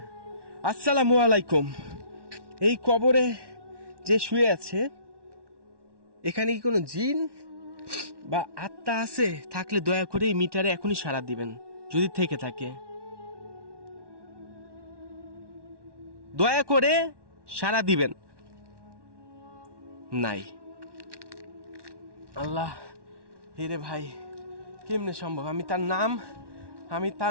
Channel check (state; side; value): late; left; 1.1 ms